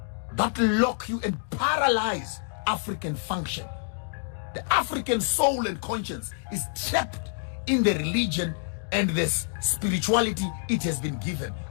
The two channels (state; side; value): silent; right; digital silence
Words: that lock you and paralyze African function. The African soul and conscience is trapped in the religion and this spirituality it has been given